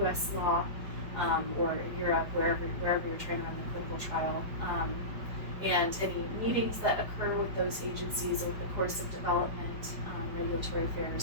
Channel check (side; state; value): left; late; 5.0 ms